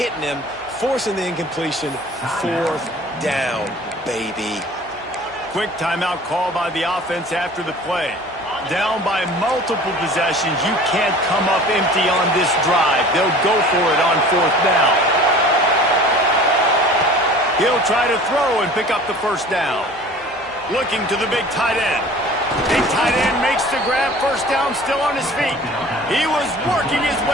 him, forcing the incompletion. Fourth down, baby. Quick timeout call by the offense after the play. Down by multiple possessions, you can't come up empty on this drive. They'll go for it on fourth down. He'll try to throw and pick up the first down. Looking to the big tight end. Big tight end makes the grab. First down, still on his feet. He was working his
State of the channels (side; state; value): both; normal; correlation 0.44